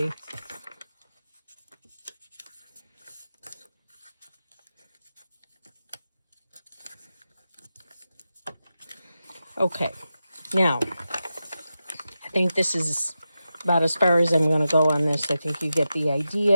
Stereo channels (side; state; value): both; inverted; correlation -0.91